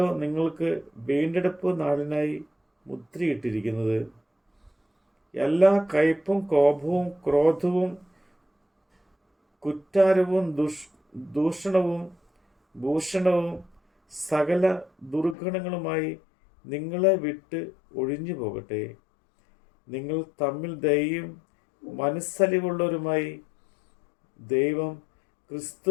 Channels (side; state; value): right; drops out; at 15.4 s